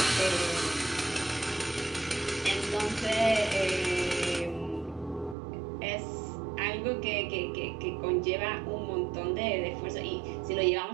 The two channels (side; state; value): left; drops out; at 5.4 s